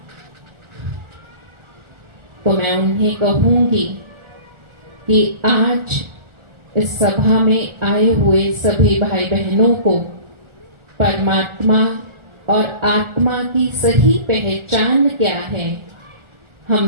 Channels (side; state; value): left; late; 1.4 ms